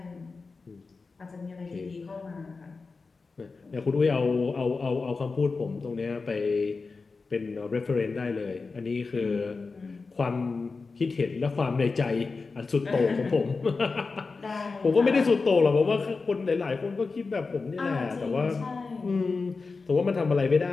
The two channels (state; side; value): quieter; right; 4.2 dB